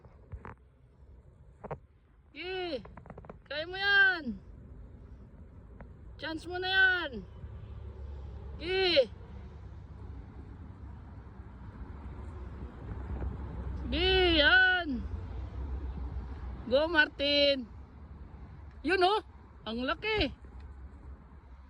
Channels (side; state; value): both; identical; correlation 1.00